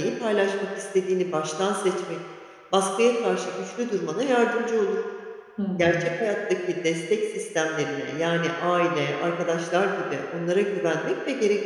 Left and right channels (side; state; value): both; identical; correlation 1.00